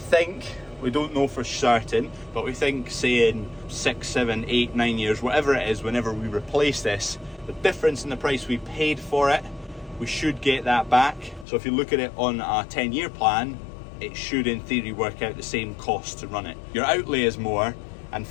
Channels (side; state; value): right; drops out; at 11.5 s